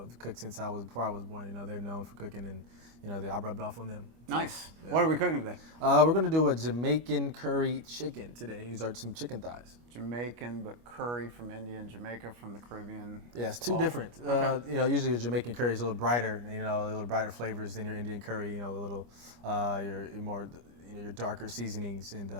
cooked since before I was born. You know, they're known for cooking, and you know, I rubbed off on them. So, Nice. yeah. What are we cooking today? We're gonna do a Jamaican curry chicken today. These are some chicken thighs. Jamaican, but curry from India and Jamaica from the Caribbean. Yeah, it's two different. Okay. You know, usually a Jamaican curry is a little brighter. You know, a little brighter flavors than your Indian curry. You know, a little your more your darker seasonings, and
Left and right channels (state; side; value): late; left; 25 ms